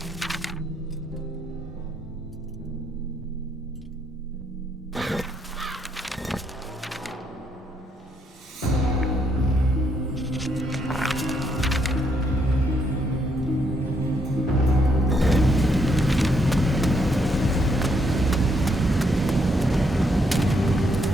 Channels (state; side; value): normal; both; correlation 0.74